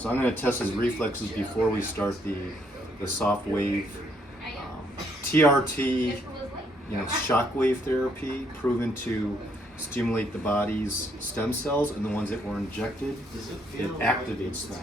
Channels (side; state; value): both; normal; correlation 0.71